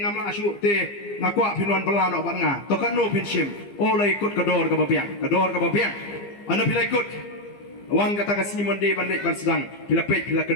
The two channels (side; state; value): right; late; 15 ms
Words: ngam la asyu te ngakwa phi nuan bela no ban nga. To kan no phin sim. Olai kot kador ka ba piang. Kador ka ba piang. Ana phi lai kot. Wan kata kasih monde bandit ban sedang pila pet pila